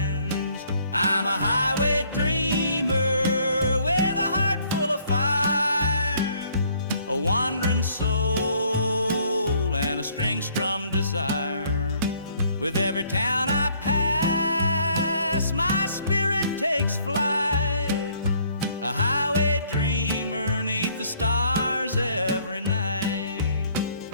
I'm a highway dreamer with a heart full of fire, a wandering soul and a string-strummed desire. With every town I pass, my spirit takes flight, a highway dreamer 'neath the stars every night.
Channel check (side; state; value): both; inverted; correlation -0.63